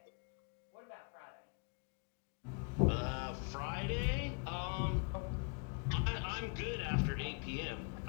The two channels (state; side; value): quieter; right; 36.6 dB